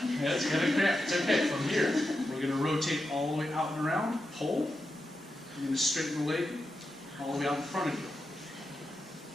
Yeah, it's going to cramp. It's okay. From here, we're going to rotate all the way out and around. Pull. You're going to straighten the leg all the way out in front of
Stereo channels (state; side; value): normal; both; correlation 0.88